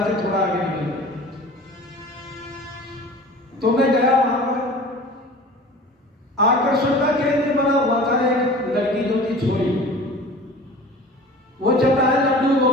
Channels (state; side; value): normal; both; correlation 0.41